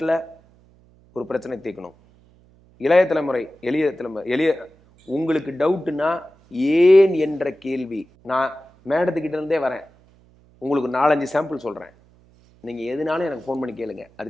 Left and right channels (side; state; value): right; noise; hum, 30 dB below the sound